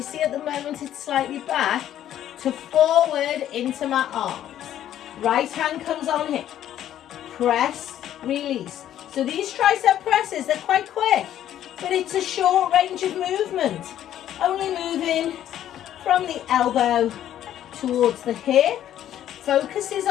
see at the moment it's slightly back, to forward into my arms. Right hand comes on here. Press, release. So these tricep presses, they're quite quick, but it's a short range of movement. Only moving from the elbow towards the hip. Focus is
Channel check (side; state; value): right; quieter; 11.4 dB